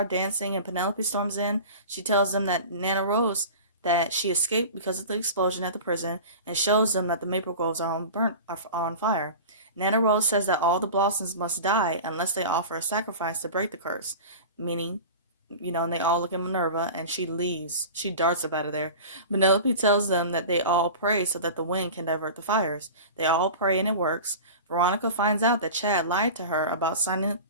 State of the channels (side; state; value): both; inverted; correlation -0.35